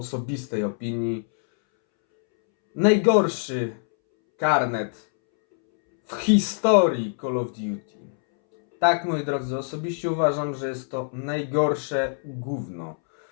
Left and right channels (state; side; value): silent; right; 62 dB below the other